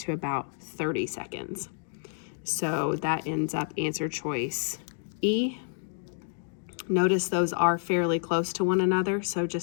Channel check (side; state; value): right; silent; digital silence